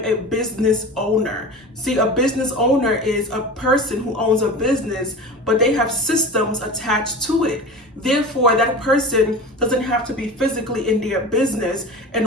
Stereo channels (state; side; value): normal; both; correlation 0.33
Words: a business owner. See, a business owner is a person who owns a business, but they have systems attached to it. Therefore, that person doesn't have to be physically in their business in